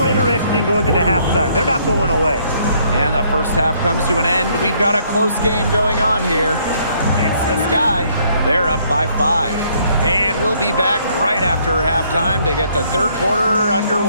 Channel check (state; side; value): inverted; both; correlation -0.67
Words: interesting going into halftime. They're not going away. And the first half comes to an end. We've got a close game going on here. It's the Sky. They're up by 5. And we'll be back right after halftime to get the third quarter